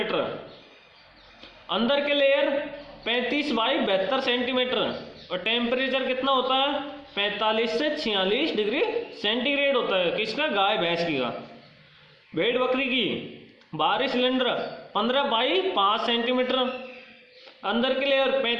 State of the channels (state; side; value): identical; both; correlation 1.00